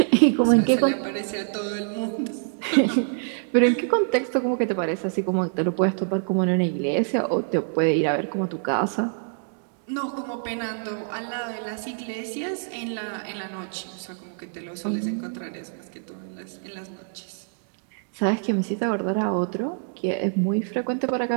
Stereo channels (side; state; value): left; silent; digital silence